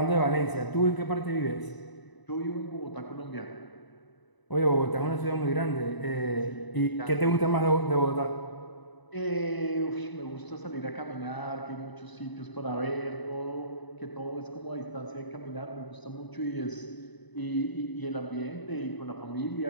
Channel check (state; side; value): late; right; 1.0 ms